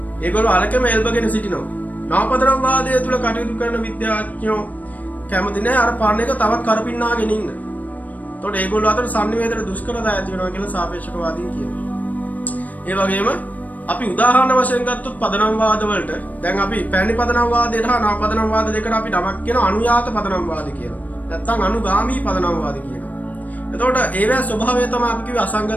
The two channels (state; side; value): late; right; 0.076 ms